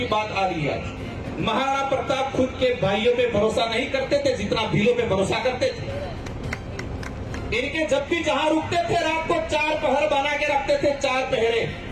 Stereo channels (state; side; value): identical; both; correlation 1.00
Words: बात आ रही है। महाराणा प्रताप खुद के भाइयों पे भरोसा नहीं करते थे जितना भीलों पे भरोसा करते थे। इनके जब भी जहां रुकते थे रात को 4 पहर बना के रखते थे, 4 पहरे,